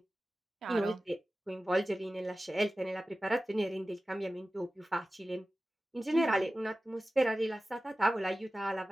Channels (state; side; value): normal; both; correlation 0.96